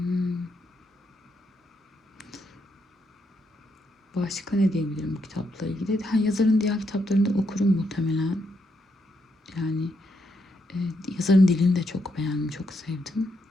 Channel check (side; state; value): both; normal; correlation 0.79